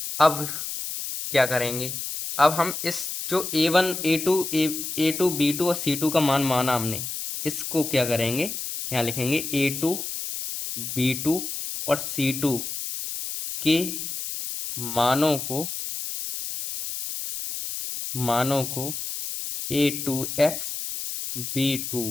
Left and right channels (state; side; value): noise; left; hiss, 6 dB below the sound